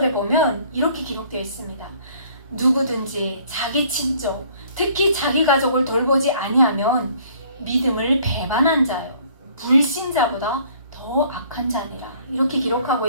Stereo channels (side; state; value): both; inverted; correlation -0.57